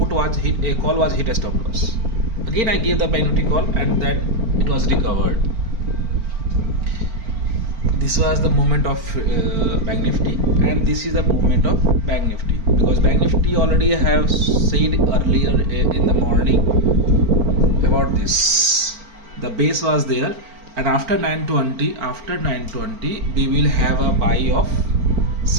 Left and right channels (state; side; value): late; left; 4.4 ms